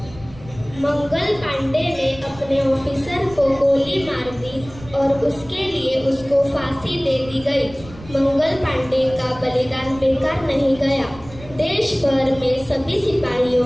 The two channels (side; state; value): right; noise; rumble, 18 dB below the sound